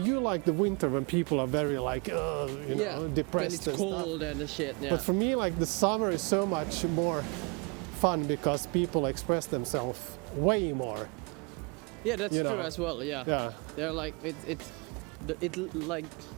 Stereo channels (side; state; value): left; quieter; 32.0 dB